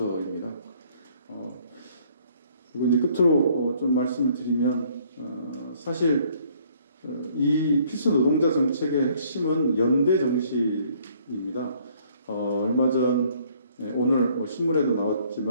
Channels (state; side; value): inverted; both; correlation -0.62